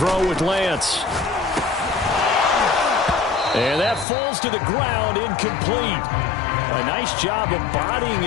with Lance. And that falls to the ground, incomplete. A nice job of bodying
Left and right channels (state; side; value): drops out; right; at 4.0 s